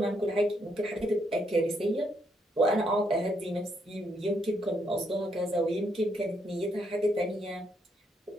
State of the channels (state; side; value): normal; both; correlation 0.75